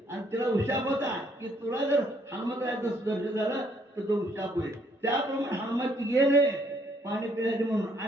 आणि तिला उशाप होता की तुला जर हनुमंताचं दर्शन झालं तर तो उशाप होईल. त्याप्रमाणे हनुमंत गेले पाणी पिण्याचे म्हणून,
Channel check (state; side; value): normal; both; correlation 0.68